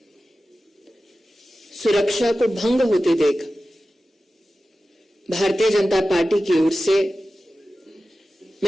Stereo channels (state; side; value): normal; both; correlation 0.94